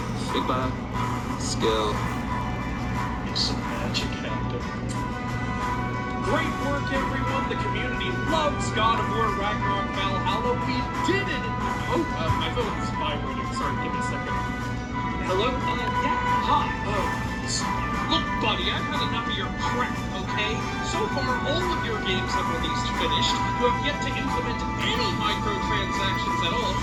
Figma skill. Make some magic happen. Great work, everyone. The community loves God of War Ragnarok Valhalla. We did it. Oh, my phone is vibrating. Sorry, give me a second. Hello? Yeah. Hi. Look, buddy, I've had enough of your crap, okay? So far, all of your games have released finished. You have yet to implement any microtransactions at all,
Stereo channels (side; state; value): both; identical; correlation 1.00